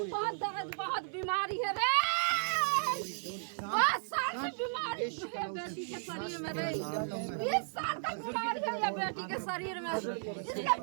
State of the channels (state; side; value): silent; left; digital silence